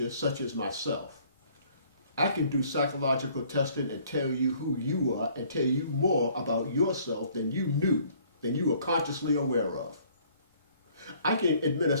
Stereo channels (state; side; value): inverted; both; correlation -0.59